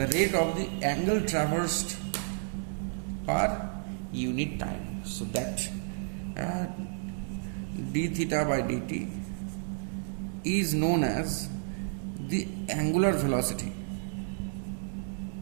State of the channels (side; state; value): left; silent; 57 dB below the other